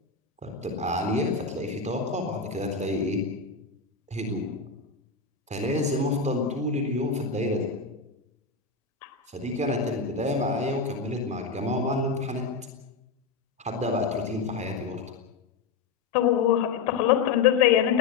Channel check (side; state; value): right; quieter; 4.9 dB